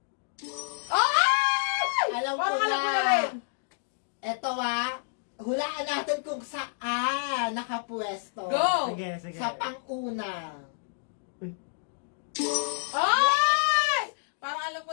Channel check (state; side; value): silent; right; digital silence